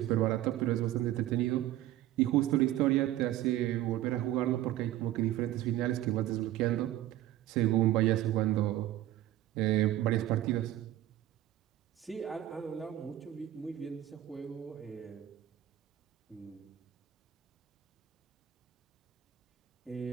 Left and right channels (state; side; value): quieter; left; 13.8 dB